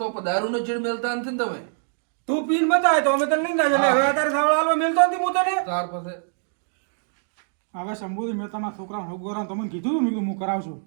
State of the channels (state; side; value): silent; left; digital silence